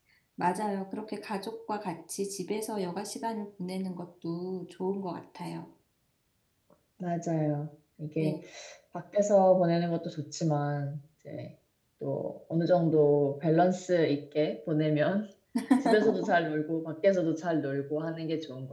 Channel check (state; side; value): identical; both; correlation 1.00